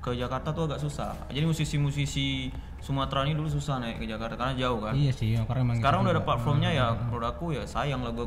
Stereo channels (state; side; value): identical; both; correlation 1.00